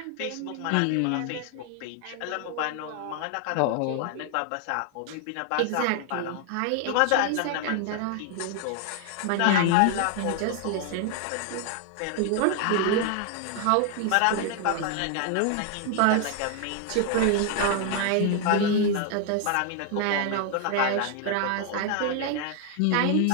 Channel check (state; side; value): different; both; correlation 0.00